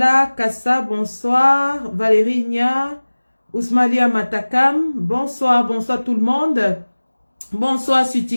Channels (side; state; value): both; inverted; correlation -1.00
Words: Kassa, bonsoir, Valérie Nia, Ousmalia Matakam, bonsoir, bonsoir tout le monde, bonsoir sur